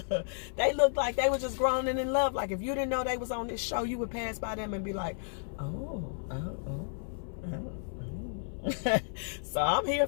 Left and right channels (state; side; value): silent; right; 56 dB below the other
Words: They looked like they were just grown and in love. Like, if you didn't know they was on this show, you would pass by them and be like, oh. So I'm here